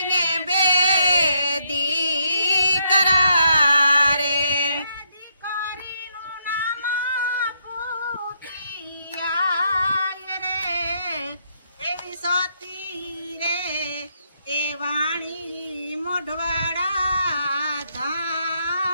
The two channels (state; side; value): inverted; both; correlation -0.75